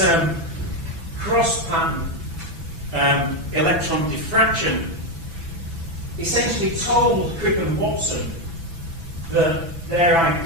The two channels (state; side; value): late; left; 6.0 ms